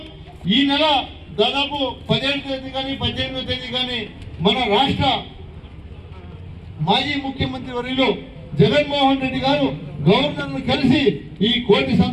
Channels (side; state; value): both; identical; correlation 1.00